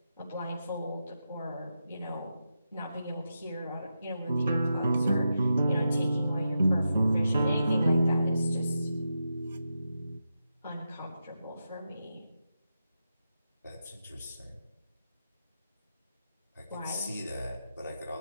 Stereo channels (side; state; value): both; inverted; correlation -0.87